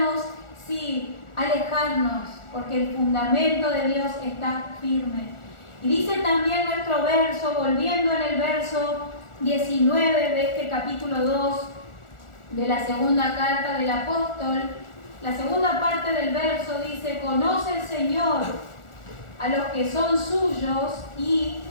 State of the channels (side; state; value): right; late; 1.4 ms